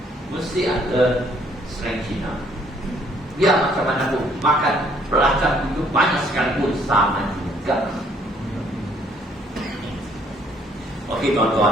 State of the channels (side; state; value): both; normal; correlation 0.64